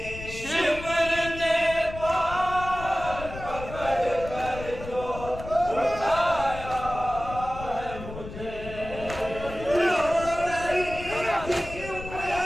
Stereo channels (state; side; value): noise; left; rumble, 11 dB below the sound